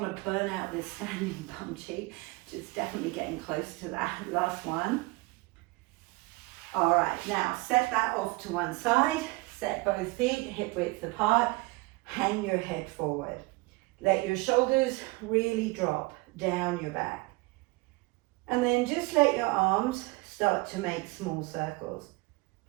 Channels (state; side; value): quieter; left; 23.9 dB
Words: to burn out this standing bum cheek. Just definitely getting close to that. Last one. All right, now set that off to one side. Set both feet hip width apart. Hang your head forward. Let your shoulders really drop down your back. And then just let your arms start to make small circles,